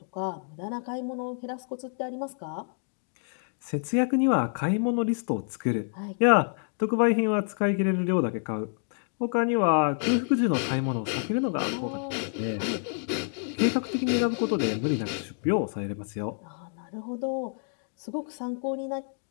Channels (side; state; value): right; silent; 59 dB below the other